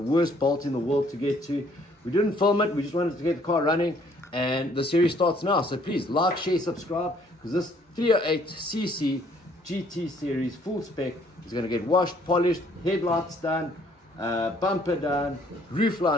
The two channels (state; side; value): normal; both; correlation 0.63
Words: bolt in the world to get to. We didn't film it. We just wanted to get the car running, and the series starts now. So please like, share, subscribe, because this 308cc GT series full spec is going to get washed, polished, headlights done, bumper done, roof